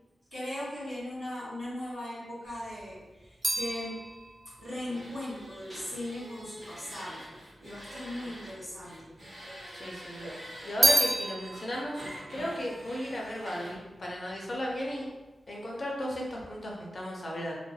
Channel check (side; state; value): both; normal; correlation 0.93